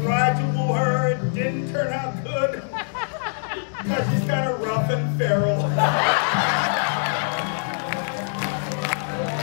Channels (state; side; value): silent; right; digital silence